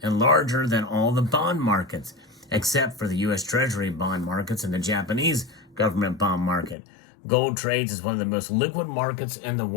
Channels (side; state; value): right; drops out; at 6.8 s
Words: and larger than all the bond markets, except for the U.S. Treasury bond markets and the Japanese government bond market. Gold trades as one of the most liquid markets in the